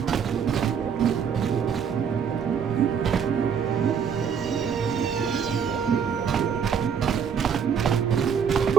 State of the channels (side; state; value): left; quieter; 7.2 dB